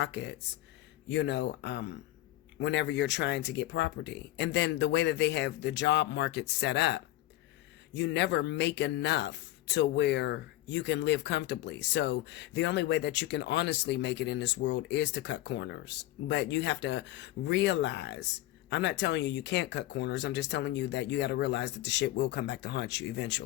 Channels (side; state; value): right; quieter; 15.6 dB